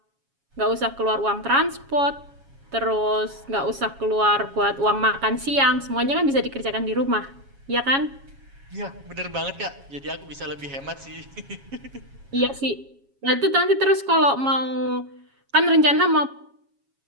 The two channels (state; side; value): late; left; 7.3 ms